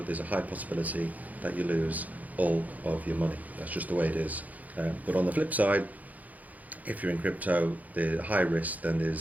there's a high possibility that you lose all of your money. That's just the way it is. But on the flip side, if you're in crypto, there's high risk, then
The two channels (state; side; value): late; left; 0.078 ms